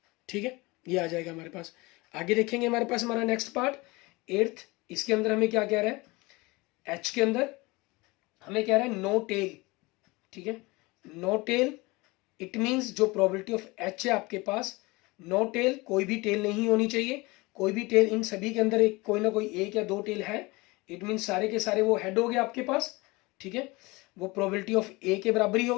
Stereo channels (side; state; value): right; quieter; 23.6 dB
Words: ठीक है, ये आ जाएगा हमारे पास। आगे देखेंगे हमारे पास हमारा नेक्स्ट पार्ट 8th, इसके अंदर हमें क्या कह रहा है, एच के अंदर हमें कह रहा है नो टेल, ठीक है। नो टेल इट मीन्स जो प्रोबेबिलिटी ऑफ एच है आपके पास, नो टेल कोई भी टेल नहीं होनी चाहिए, कोई भी टेल, इन सभी के अंदर एक कोई ना कोई 1 या 2 टेल है, इट मीन्स सारे के सारे वो हेड हो गए आपके पास, ठीक है। वो प्रोबेबिलिटी ऑफ ए के बराबर ही